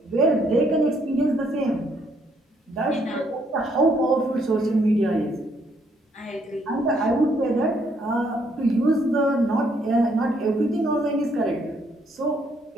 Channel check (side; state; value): both; normal; correlation 0.70